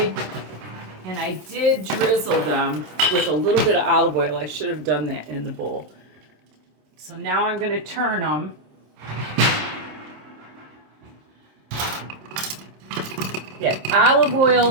and I did drizzle them with a little bit of olive oil. I should have done that in the bowl. So now I'm going to turn them. Yeah, olive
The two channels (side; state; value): left; late; 27 ms